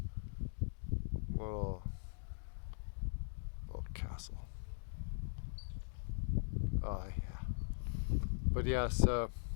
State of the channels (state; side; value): silent; right; digital silence